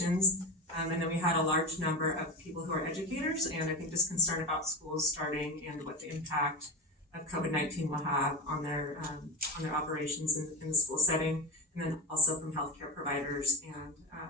And then we had a large number of people who are educators and I think just concerned about schools starting and what the impact of COVID-19 will have on their operations in the school setting, and then also from healthcare providers and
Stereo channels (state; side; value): normal; both; correlation 0.21